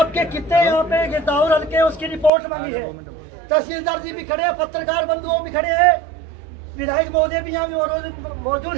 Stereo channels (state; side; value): drops out; left; at 2.3 s